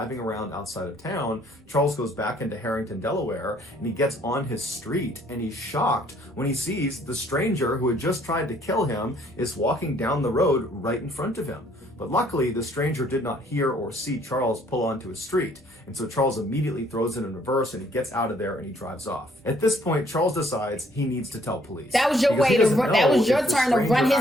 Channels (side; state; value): both; normal; correlation 0.63